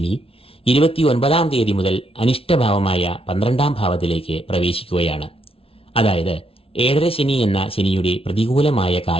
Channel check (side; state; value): right; late; 0.27 ms